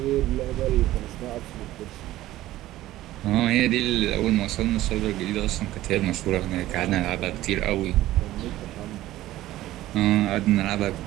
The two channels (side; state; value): left; quieter; 15.4 dB